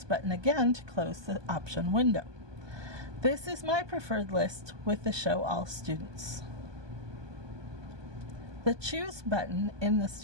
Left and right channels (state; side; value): late; left; 1.2 ms